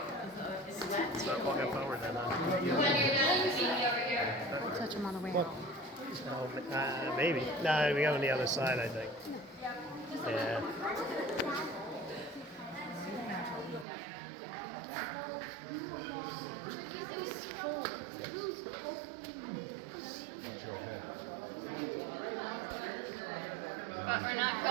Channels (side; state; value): left; drops out; at 13.9 s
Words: Start walking forward then. When you're done, you meet me over here. We'll touch them on the way out. Oh, maybe. No, we go on the other side, I think. Yeah. But we're not